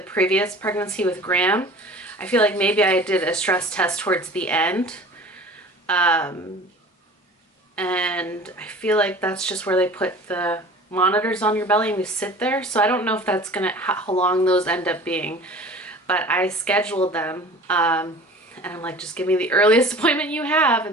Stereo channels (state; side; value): normal; both; correlation 0.42